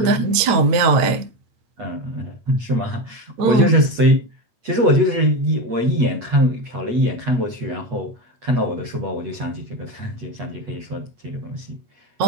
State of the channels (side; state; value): left; late; 9.0 ms